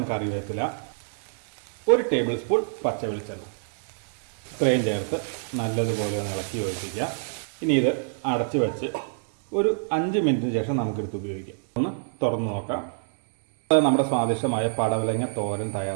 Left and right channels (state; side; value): silent; left; digital silence